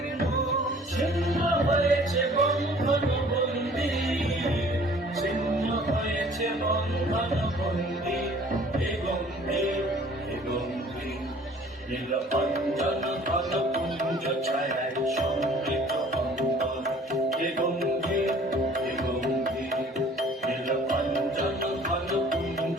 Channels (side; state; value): both; normal; correlation 0.52